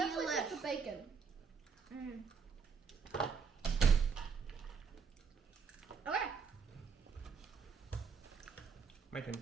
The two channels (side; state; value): left; quieter; 5.9 dB